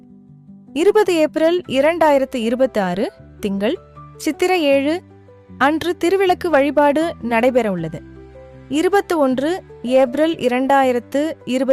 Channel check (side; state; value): both; identical; correlation 1.00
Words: 20 ஏப்ரல் 2026 திங்கள், சித்திரை 7 அன்று திருவிளக்கு வழிபாடு நடைபெற உள்ளது. 21 ஏப்ரல்